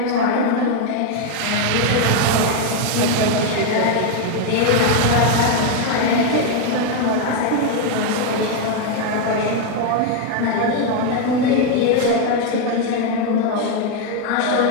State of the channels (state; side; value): different; both; correlation 0.01